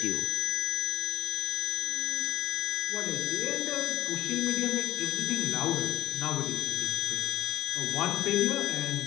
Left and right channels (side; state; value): right; quieter; 14.0 dB